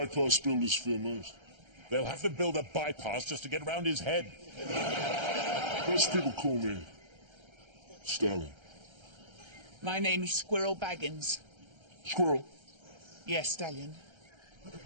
builders fear most. They'll have to build a bypass just to get around his head. Most people call me Stallion. My name's Squirrel Baggins. Squirrel. Yes, Stallion.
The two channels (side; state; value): left; late; 1.3 ms